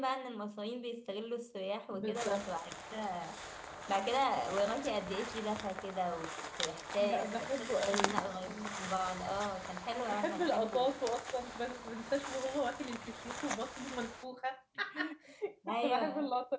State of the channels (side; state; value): both; identical; correlation 1.00